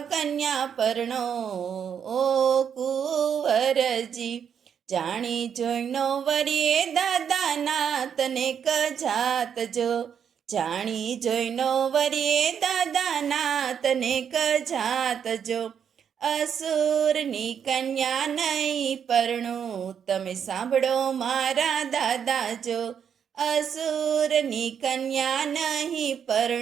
કન્યા પરણો। ઓ કુંવરજી, જાણી જોઈનો વરીએ દાદાના તને કજાત જો। જાણી જોઈનો વરીએ દાદાના તને કજાત જો। અસુરની કન્યા નહીં પરણું, તમે સાંભળો મારા દાદા જો। અસુરની કન્યા નહીં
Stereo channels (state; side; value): quieter; left; 7.9 dB